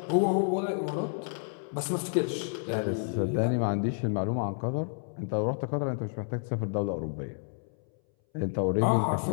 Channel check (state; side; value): silent; right; 58 dB below the other